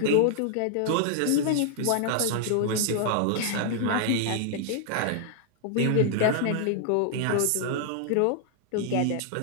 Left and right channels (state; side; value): different; both; correlation -0.01